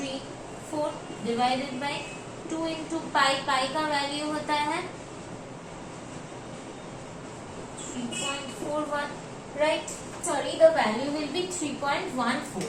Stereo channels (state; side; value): identical; both; correlation 1.00